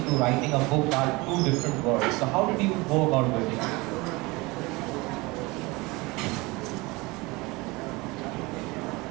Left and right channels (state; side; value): quieter; left; 23.7 dB